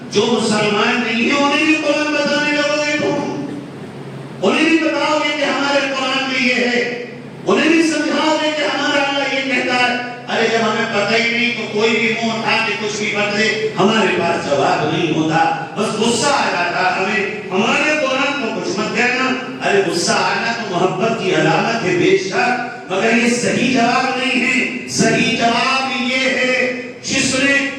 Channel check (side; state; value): both; identical; correlation 1.00